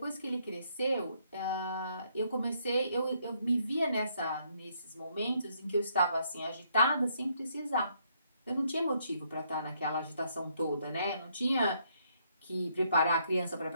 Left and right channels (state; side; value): inverted; both; correlation -0.71